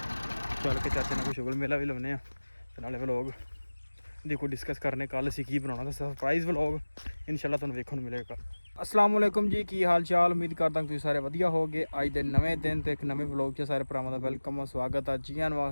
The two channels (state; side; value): inverted; both; correlation -1.00